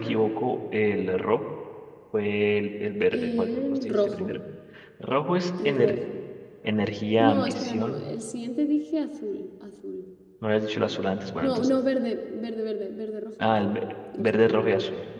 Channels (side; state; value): both; identical; correlation 1.00